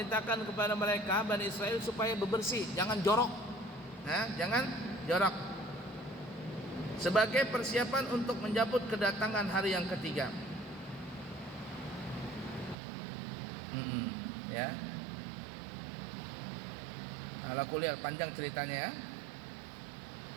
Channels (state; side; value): drops out; left; at 12.8 s